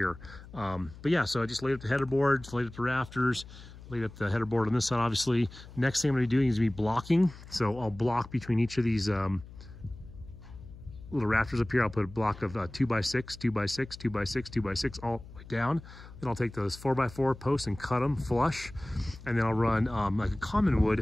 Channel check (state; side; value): noise; left; hum, 17 dB below the sound